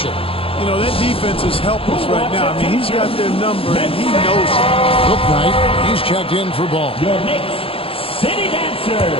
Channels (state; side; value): late; right; 0.27 ms